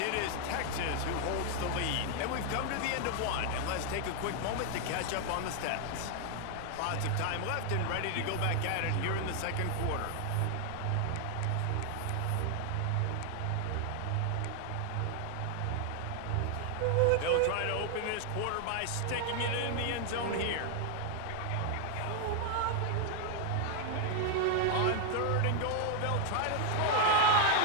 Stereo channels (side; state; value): both; different; correlation 0.00